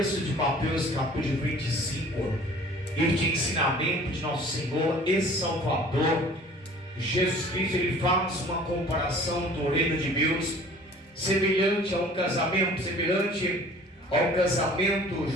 de Mateus capítulo 25, e de ensinamento de nosso Senhor e Salvador Jesus Cristo. Ele faz uma comparação do reino de Deus semelhante a um casamento, semelhante ao casamento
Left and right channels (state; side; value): normal; both; correlation 0.49